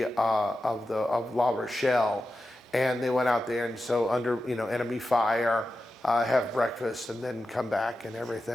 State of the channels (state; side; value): normal; both; correlation 0.91